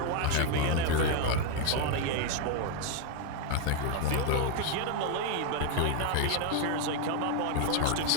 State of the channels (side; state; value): both; different; correlation 0.01